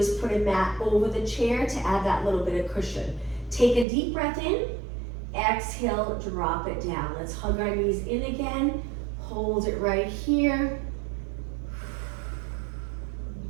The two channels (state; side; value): drops out; left; at 3.9 s